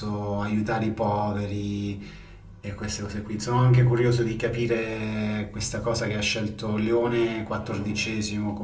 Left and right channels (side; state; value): both; identical; correlation 1.00